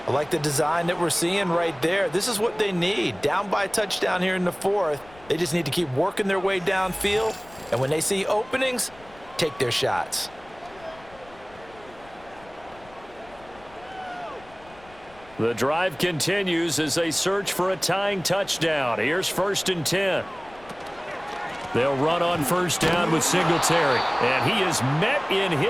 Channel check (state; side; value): noise; left; rumble, 24 dB below the sound